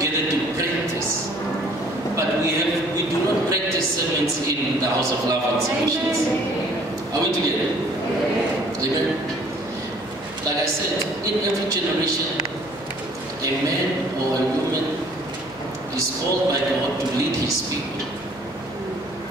to practice. But we do not practice sermons in the House of Love and Solutions. Are we together? Amen. Like I said, in every generation, a man or a woman is called by God to lead his people.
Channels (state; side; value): noise; left; hum, 25 dB below the sound